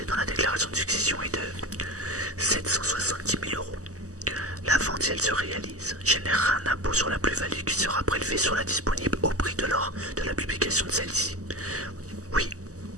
dans la déclaration de succession est de 770 000 €. La vente, si elle se réalise, générera un impôt sur la plus-value qui sera prélevé sur la disponible au prix de l'or de la publication de celle-ci. Oui,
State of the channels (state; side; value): late; left; 0.66 ms